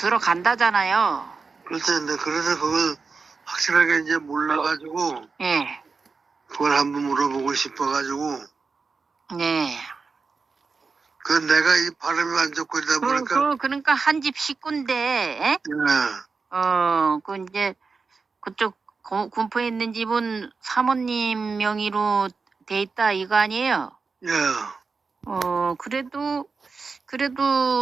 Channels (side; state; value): left; quieter; 4.6 dB